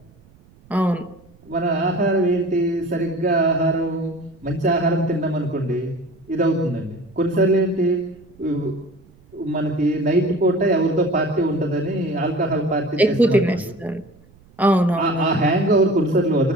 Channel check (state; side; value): noise; right; rumble, 28 dB below the sound